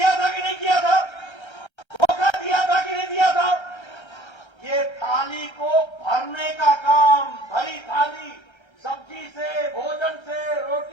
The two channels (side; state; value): right; late; 1.3 ms